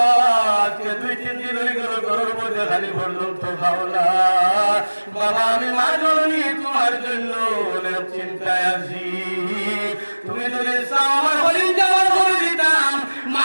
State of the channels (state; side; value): inverted; both; correlation -1.00